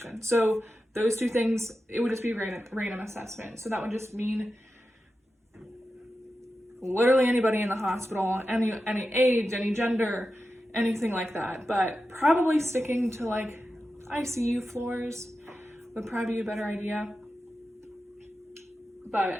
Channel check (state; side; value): normal; both; correlation 0.91